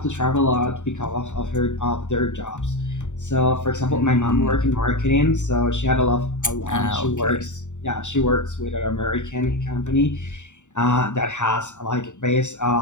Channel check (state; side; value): late; right; 0.84 ms